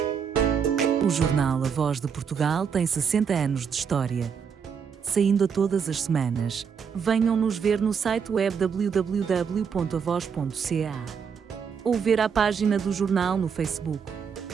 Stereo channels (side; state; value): left; quieter; 6.7 dB